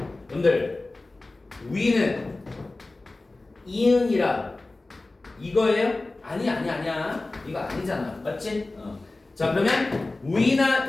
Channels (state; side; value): quieter; right; 3.1 dB